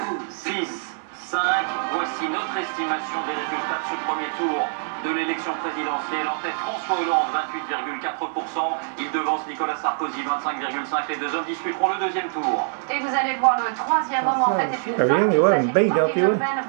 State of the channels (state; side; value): silent; left; digital silence